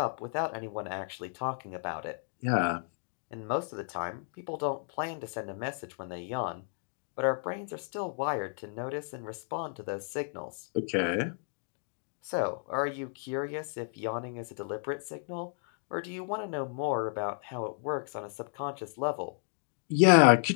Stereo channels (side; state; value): right; silent; digital silence